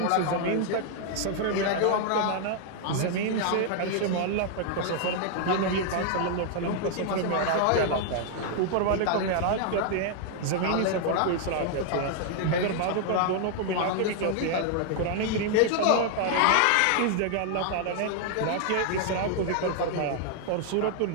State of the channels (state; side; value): different; both; correlation 0.00